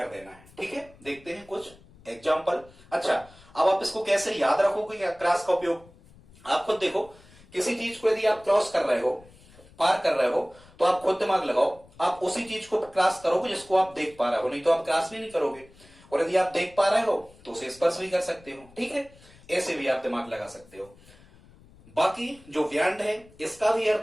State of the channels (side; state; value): left; noise; rumble, 25 dB below the sound